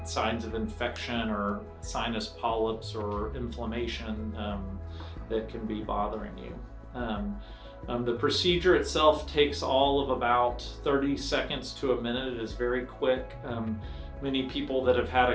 signs of infection or sinus polyps or inflammation that can be bothering you. The procedure itself takes all of about 30 seconds to a minute. It is very quick. Many people that have had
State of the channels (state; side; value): identical; both; correlation 1.00